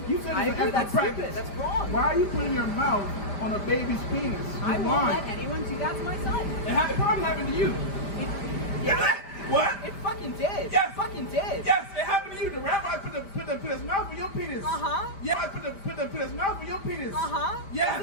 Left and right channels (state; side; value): late; right; 5.0 ms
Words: it's I an agree, effort that's practice. stupid. That's wrong. Why are you putting your mouth on a baby's penis? I won't let anyone do that to my son. It probably happened to you. Yeah. What? It fucking did. Yes. It fucking did. Yes, it happened to you. The rabbi put his mouth on your penis. Yeah, I put his mouth on your penis. Yes.